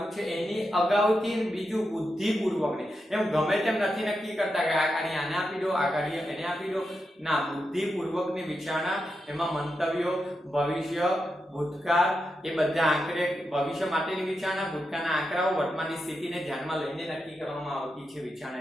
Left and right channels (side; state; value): both; normal; correlation 0.87